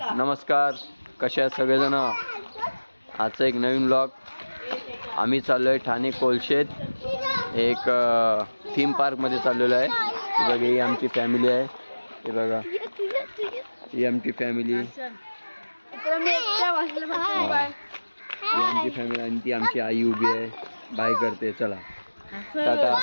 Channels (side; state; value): both; inverted; correlation -1.00